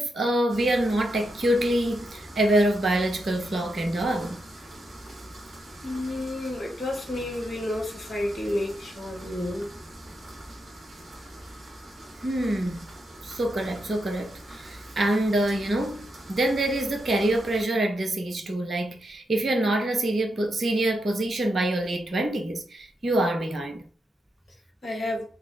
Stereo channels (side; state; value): both; normal; correlation 0.84